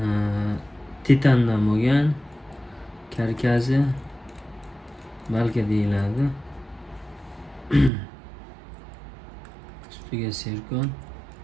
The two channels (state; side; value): drops out; left; at 7.9 s